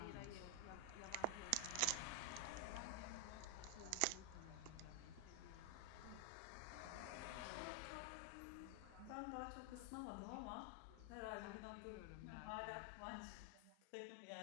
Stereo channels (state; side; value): different; both; correlation 0.00